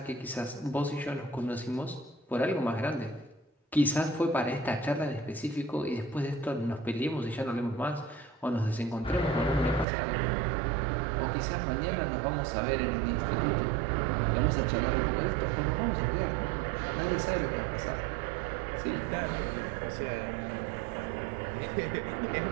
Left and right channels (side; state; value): left; drops out; at 9.9 s